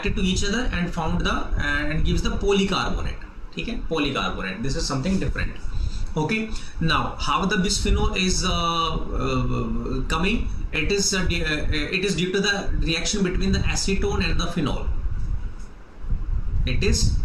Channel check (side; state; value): both; identical; correlation 1.00